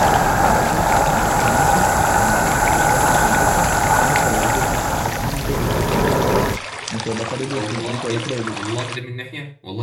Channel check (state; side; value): identical; both; correlation 1.00